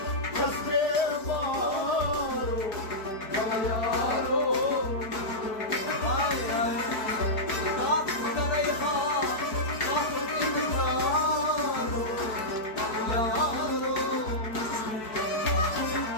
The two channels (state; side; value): late; right; 4.6 ms